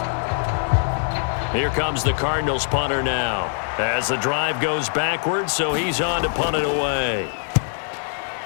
Here comes the Cardinals punter now. As the drive goes backwards, so he's on to punt it away.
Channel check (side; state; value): right; silent; digital silence